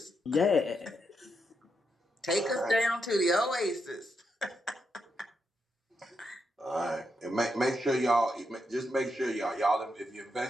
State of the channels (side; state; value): both; normal; correlation 0.82